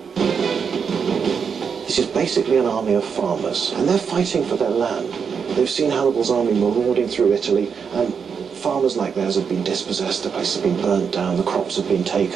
This is basically an army of farmers, and they're fighting for their land. They've seen Hannibal's army marauding through Italy, and farmers like theirs have been dispossessed, the place has been burnt down, the crops have been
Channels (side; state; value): left; quieter; 6.4 dB